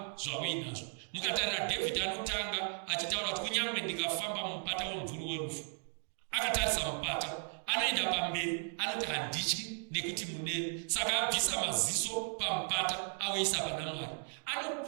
zvauinazvo. Mukatarira David anotanga achitaura kuti kunyange ndikafamba mumupata womvuru werufu. Akatarisa mupata, anoenda pamberi, anoti handityi nekuti muneni. Saka abvisa maziso pamupata auyisa pana Mwari.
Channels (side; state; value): left; silent; 54 dB below the other